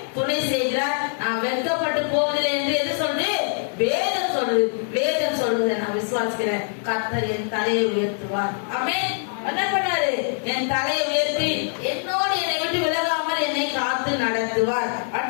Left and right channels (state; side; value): silent; right; digital silence